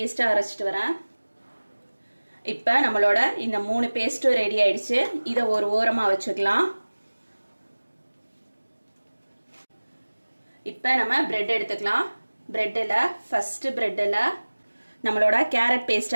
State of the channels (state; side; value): inverted; both; correlation -1.00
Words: அரைச்சிட்டு வரேன். இப்ப நம்மளோட இந்த 3 பேஸ்டும் ரெடி ஆயிடுச்சு. இதை ஒரு ஓரமா வச்சுக்கலாம். இப்போ நம்ம பிரெட் எடுத்துக்கலாம். பிரெட்ல ஃபர்ஸ்ட் பிரெட்ல நம்மளோட கேரட்